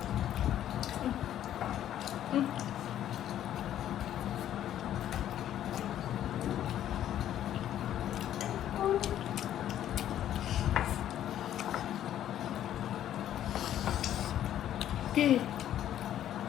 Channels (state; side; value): quieter; right; 11.4 dB